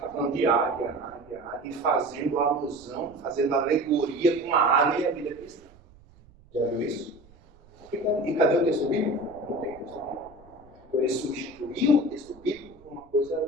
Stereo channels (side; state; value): right; noise; rumble, 26 dB below the sound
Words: falando de águia, e fazendo alusão, fazendo alegoria com a águia e a vida cristã. Já viu isso? E cadê o texto bíblico? Não tem texto bíblico. Então ele substituiu o texto bíblico por uma coisa da